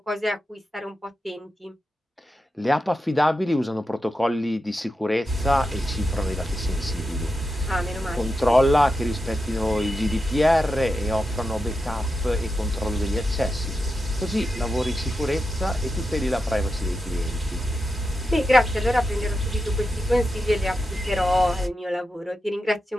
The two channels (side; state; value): both; normal; correlation 0.89